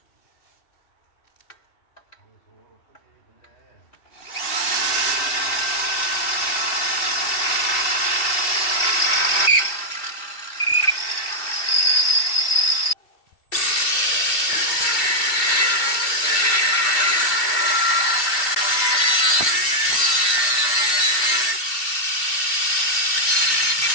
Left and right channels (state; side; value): late; right; 2.7 ms